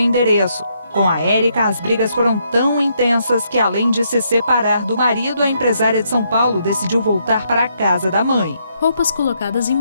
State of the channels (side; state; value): both; inverted; correlation -0.75